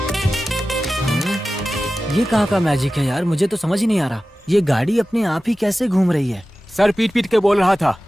ये कहाँ का मैजिक है यार, मुझे तो समझ ही नहीं आ रहा। ये गाड़ी अपने आप ही कैसे घूम रही है? सर पीट पीट के बोल रहा था,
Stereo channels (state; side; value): normal; both; correlation 0.95